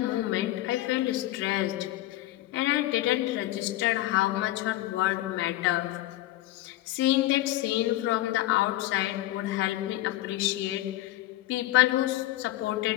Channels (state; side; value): quieter; right; 16.0 dB